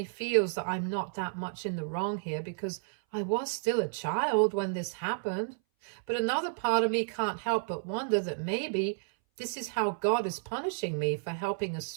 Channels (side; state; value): left; silent; 57 dB below the other